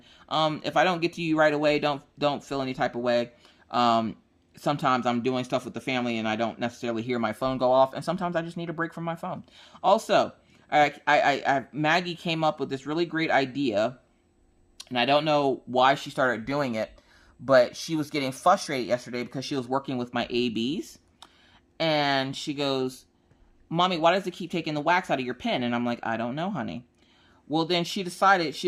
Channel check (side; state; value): both; identical; correlation 1.00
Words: If I don't get to you right away, don't feel any type of way. Sometimes I'm doing stuff with the family and I don't necessarily hear my phone go off, and sometimes I just need a break from my phone. Also, Maggie came up with this really great idea, and I don't know why she started doing it, but she was getting frustrated yesterday because she was working with my ABs, and she goes, Mommy, why does it keep taking the wax out of your pen? And I'm like, I don't know, honey. Well, then she decided she